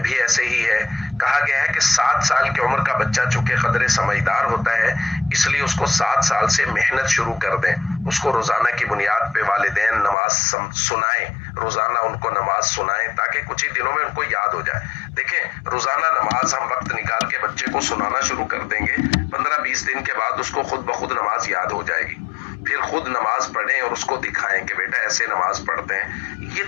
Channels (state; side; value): drops out; right; at 10.2 s